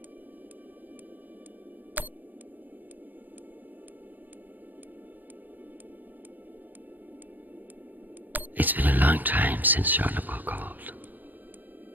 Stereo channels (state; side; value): late; left; 0.085 ms